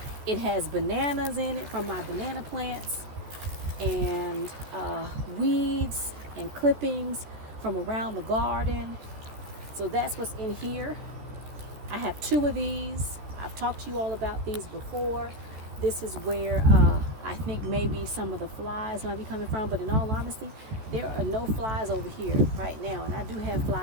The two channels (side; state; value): left; late; 14 ms